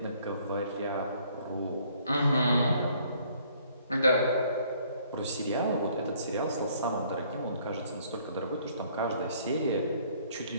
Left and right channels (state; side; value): inverted; both; correlation -0.62